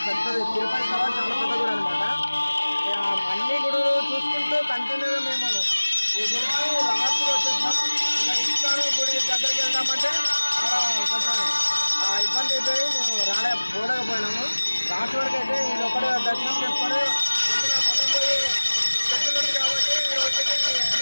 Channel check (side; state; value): both; inverted; correlation -1.00